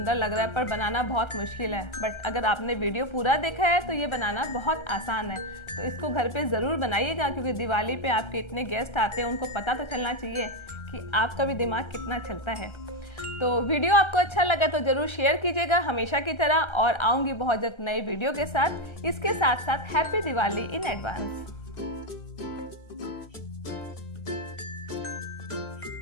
लग रहा है, पर बनाना बहुत मुश्किल है। बट अगर आपने वीडियो पूरा देखा है तो ये बनाना बहुत आसान है। तो इसको घर पे ज़रूर बनाइएगा, क्योंकि दिवाली पे आपके इतने गेस्ट आते हैं, उनको पता तो चलना चाहिए कि आपका भी दिमाग कितना चलता है। तो वीडियो आपको अच्छा लगा तो ज़रूर शेयर कीजिएगा हमेशा की तरह, और आऊँगी बहुत जल्द नए वीडियो के साथ। इसके साथ साथ हैप्पी दिवाली इन एडवांस।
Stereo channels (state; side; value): late; right; 1.3 ms